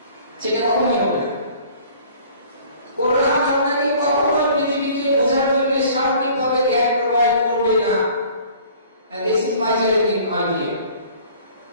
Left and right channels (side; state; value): both; inverted; correlation -0.51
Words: সেটা কখনোই হবে না। কোরআন আপনাকে কখনোই পৃথিবীকে বোঝার জন্য সার্বিকভাবে জ্ঞান প্রোভাইড করবে না। This is my challenging idea.